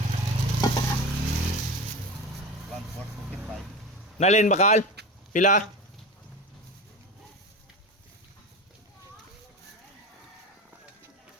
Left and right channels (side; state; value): both; normal; correlation 0.27